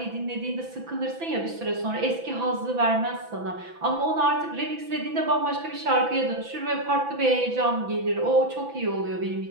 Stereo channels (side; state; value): left; late; 6.0 ms